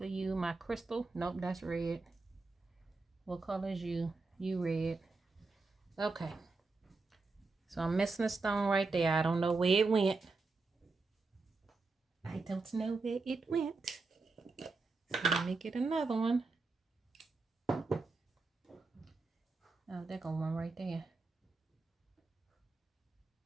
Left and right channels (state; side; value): quieter; left; 3.8 dB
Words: you, my crystal. Nope, that's red. What color is you? You red. Okay. So I'm missing a stone right there. I don't know where it went. I don't know where it went. So let me get another one. Oh, there go one right there.